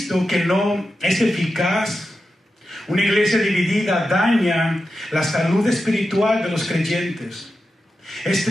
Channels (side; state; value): both; normal; correlation 0.90